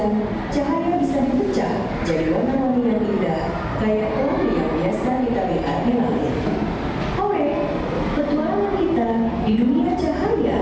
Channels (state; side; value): identical; both; correlation 1.00